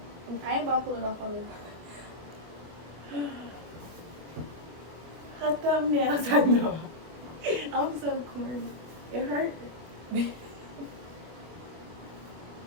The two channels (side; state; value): left; late; 25 ms